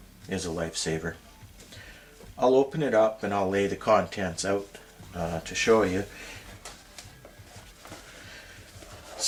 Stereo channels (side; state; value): both; identical; correlation 1.00